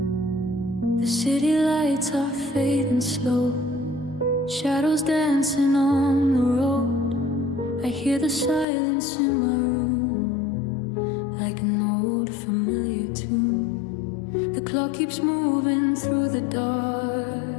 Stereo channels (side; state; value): right; drops out; at 8.7 s